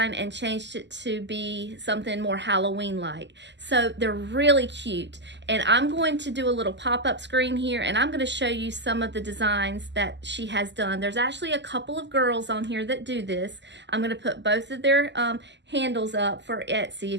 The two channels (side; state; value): left; late; 0.51 ms